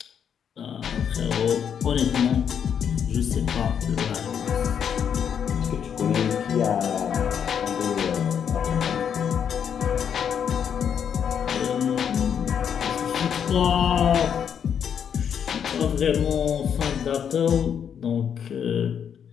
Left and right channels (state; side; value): quieter; right; 8.0 dB